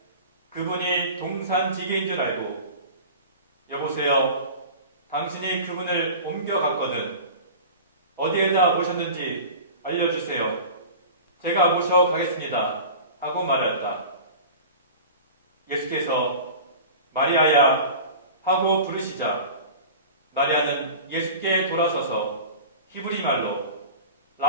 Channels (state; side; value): inverted; both; correlation -0.37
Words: 그분이 동산지기인 줄 알고 여보세요, 당신이 그분을 옮겨갔거든. 어디에다 모셨는지 알려주세요. 제가 모셔가겠습니다. 하고 말했다. 예수께서 마리아야 하고 부르시자 마리아는 예수께 돌아서서 히브리 말로